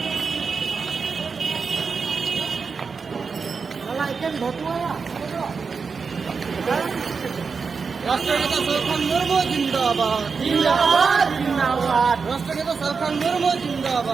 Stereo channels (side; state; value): left; quieter; 5.2 dB